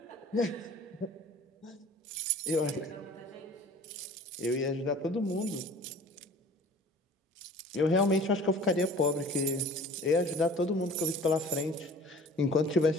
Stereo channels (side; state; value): both; normal; correlation 0.45